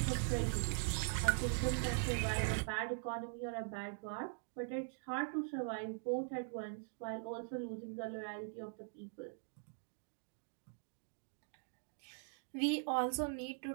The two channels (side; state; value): left; silent; digital silence